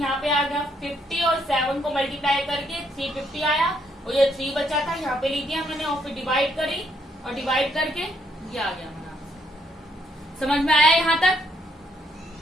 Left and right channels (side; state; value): both; normal; correlation 0.72